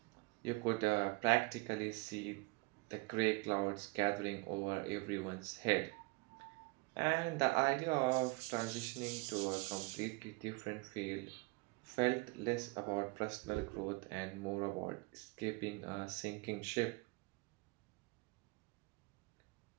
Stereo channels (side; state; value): left; quieter; 26.0 dB